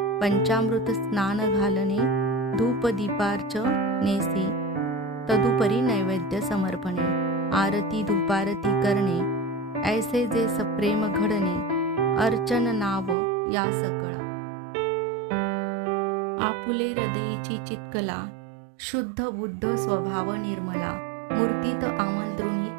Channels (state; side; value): drops out; left; at 13.2 s